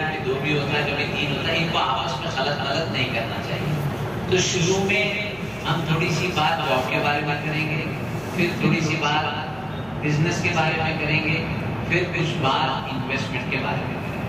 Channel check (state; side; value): noise; left; hum, 23 dB below the sound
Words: کبھی دو بھی ہوتا ہے، کبھی تین ہوتا ہے. ان کو آپس میں غلط نہیں کرنا چاہیے. تو شروع میں ہم تھوڑی سی بات جاب کے بارے میں کریں گے، پھر تھوڑی سی بات بزنس کے بارے میں کریں گے، پھر کچھ بات انویسٹمنٹ کے بارے میں کریں